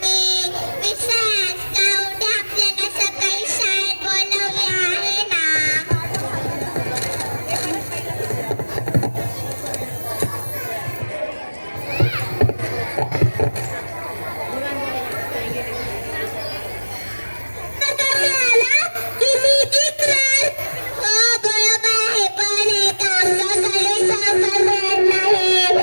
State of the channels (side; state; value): both; inverted; correlation -1.00